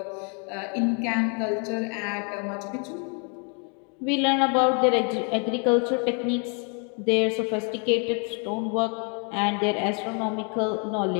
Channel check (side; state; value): right; quieter; 37.5 dB